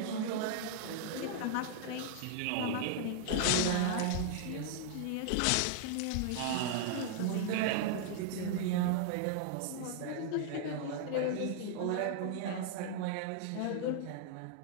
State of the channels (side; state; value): both; different; correlation 0.00